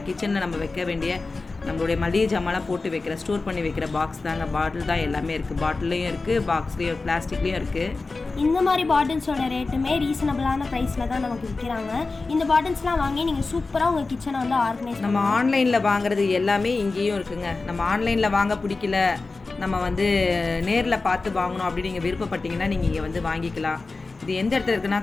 கிச்சனில் நம்ம வைக்க வேண்டிய நம்மளுடைய மளிகை ஜாமான்லாம் போட்டு வைக்கிற, ஸ்டோர் பண்ணி வைக்கிற பாக்ஸ் தாங்க. பாட்டில் தான் எல்லாமே இருக்குது. பாட்டிலையும் இருக்குது, பாக்ஸ்லேயும், பிளாஸ்டிக்லேயும் இருக்குது. இந்த மாதிரி பாட்டில்ஸோட ரேட்டுமே ரீசனபிளான ப்ரைஸில் தான் நமக்கு விற்கிறாங்க. இந்த பாட்டில்ஸ்லாம் வாங்கி நீங்கள் சூப்பராக உங்கள் கிச்சனை வந்து ஆர்கனைஸ். நம்ம ஆன்லைனில் வாங்குறது எல்லாமே இங்கேயும் இருக்குங்க. நம்ம ஆன்லைனில் வாங்க பிடிக்கல, நம்ம வந்து நேரில் பார்த்து வாங்கணும் அப்படின்னு நீங்கள் விருப்பப்பட்டீங்கன்னா நீங்கள் இங்கே வந்து வாங்கிக்கலாம். இது எந்த இடத்துல இருக்குன்னா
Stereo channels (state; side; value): quieter; right; 3.7 dB